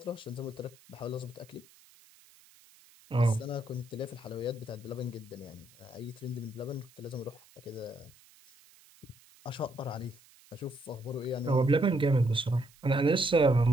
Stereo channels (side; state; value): right; noise; hiss, 26 dB below the sound